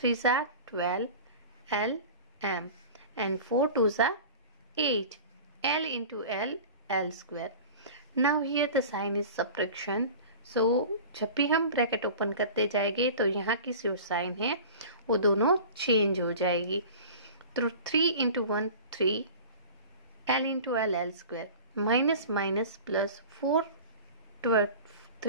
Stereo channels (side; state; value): both; inverted; correlation -0.38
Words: are 12, l m, and 4 twos are 8, l into l square. Now here the sign is subtraction. सो जब भी हम bracket open करते जाएंगे तो यहाँ की जो sign है वो दोनों चेंज हो जाएगी। तो 3 into 1 3, l into l square, minus minus plus 4